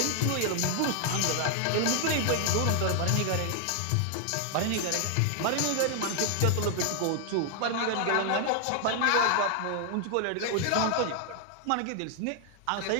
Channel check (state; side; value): different; both; correlation 0.00